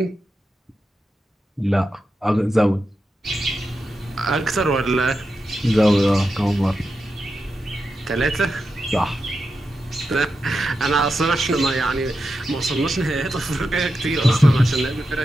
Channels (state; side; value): normal; both; correlation 0.89